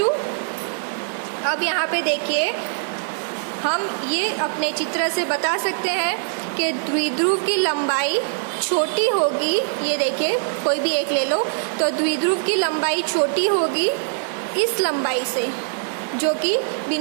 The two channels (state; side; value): silent; left; 56 dB below the other